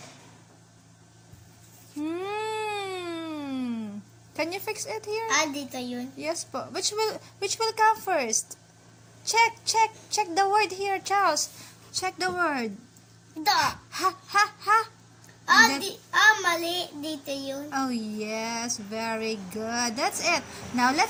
Can you fix it here? Dito yun. Yes po. Which will come first? Check the word here, Charles. Check the word. Da. Ha. That- Mali. Dito yun. Oh yes, very good. That's it. Now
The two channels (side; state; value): both; identical; correlation 1.00